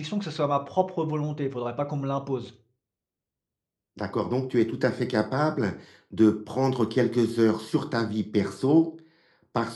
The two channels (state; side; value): identical; both; correlation 1.00